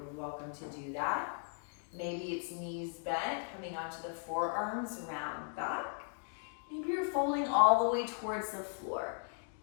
welcome to do that. Maybe it's knees bent, coming onto the forearms, round back. Maybe you're folding all the way towards the floor.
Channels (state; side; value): silent; right; 53 dB below the other